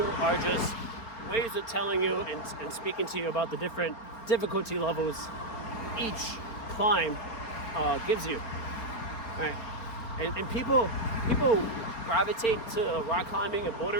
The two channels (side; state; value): right; late; 4.3 ms